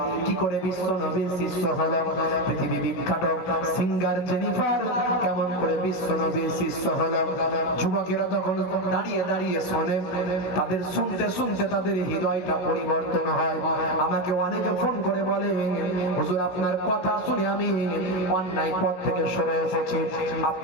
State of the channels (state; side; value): late; right; 16 ms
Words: কি করে বিশ্ব নবীর শিষ্য হলো? পৃথিবী বিখ্যাত সিঙ্গার জেনিফার কেমন করে বিশ্ব নবীর শিষ্য হলো? যুবকেরা তখন দাঁড়িয়ে দাঁড়িয়ে শোনে, তাদের শুনতে শুনতে তাদের হৃদয়টা পরিবর্তন হয়। আমাকে অনেকে ফোন করে বলে, হুজুর আপনার কথা শুনে আমি অন্যায় পথ থেকে সরে এসেছি,